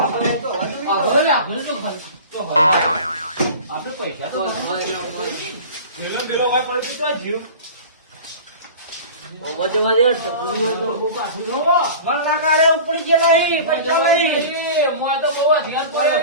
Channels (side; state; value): both; inverted; correlation -0.37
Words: હવે આપણે તો આપણે પૈસા તો લીલો લીલો હોય પડી તો જીવ. વરનાકા રે ઉપડી ગયેલો અહીં. પૈસા લઈ. મોય તો બહુ હથિયાર પડે.